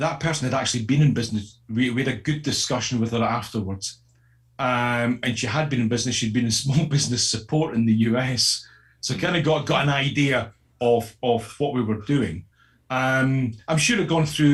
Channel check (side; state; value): both; identical; correlation 1.00